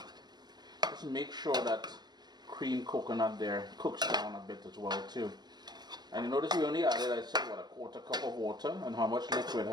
Just make sure that cream coconut there cooks down a bit as well too. And you notice we only added, I said, what, a quarter cup of water, and how much liquid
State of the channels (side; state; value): left; late; 0.20 ms